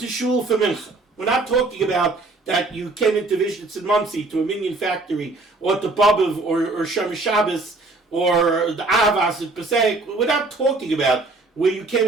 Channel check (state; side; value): quieter; left; 3.3 dB